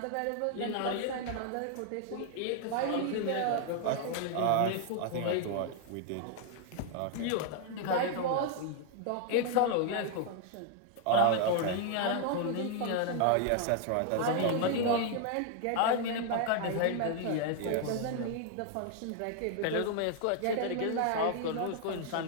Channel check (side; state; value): both; different; correlation 0.00